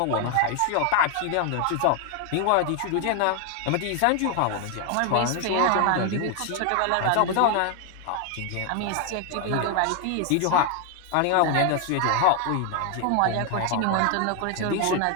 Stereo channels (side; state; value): both; different; correlation 0.01